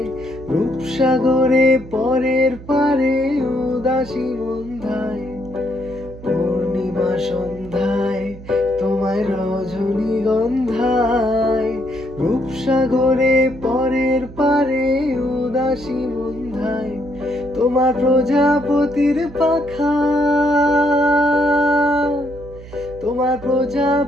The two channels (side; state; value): right; noise; hum, 16 dB below the sound